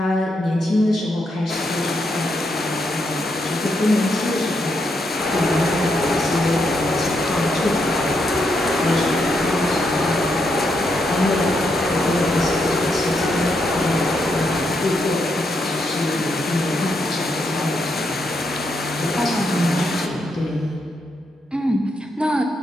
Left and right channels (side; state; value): both; normal; correlation 0.80